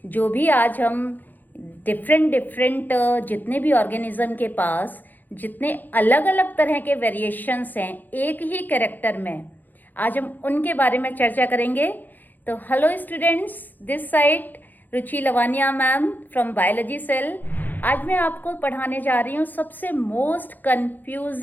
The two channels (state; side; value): late; right; 0.086 ms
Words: जो भी आज हम डिफरेंट जितने भी ऑर्गेनिज्म के पास जितने अलग अलग तरह के वेरिएशंस हैं एक ही कैरेक्टर में, आज हम उनके बारे में चर्चा करेंगे। तो hello students, this side Ruchi Lavania ma'am from biology cell. आज मैं आपको पढ़ाने जा रही हूँ सबसे most